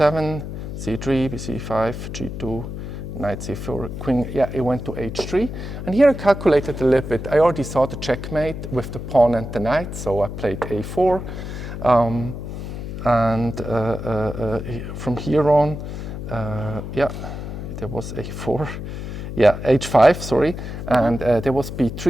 c3, c5, g2, knight c4, queen, yeah, he went to h3. And here I calculated a little bit. I already saw the checkmate with the pawn and the knight, so I played a4. From here on, there was a4. Yeah, h5, sorry. And there was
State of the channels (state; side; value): noise; left; hum, 7 dB below the sound